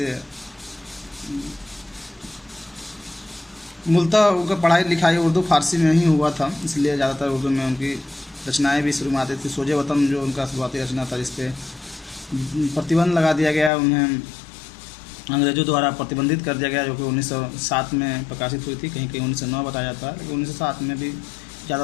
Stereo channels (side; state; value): right; drops out; at 13.7 s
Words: मूलतः उनका पढ़ाई लिखाई उर्दू फारसी में ही हुआ था, इसलिए ज़्यादातर उर्दू में उनकी रचनाएं भी शुरू में आती थी। सोजे वतन जो उनका शुरुआती रचना था, इस पर प्रतिबंध लगा दिया गया, उन्हें अंग्रेज़ों द्वारा प्रतिबंधित कर दिया गया, जो कि 1907 में प्रकाशित हुई थी। कहीं कहीं 1909 बताया जाता है, लेकिन 1907 में भी